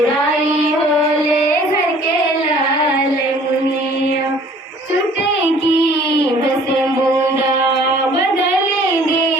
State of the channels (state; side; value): normal; both; correlation 0.53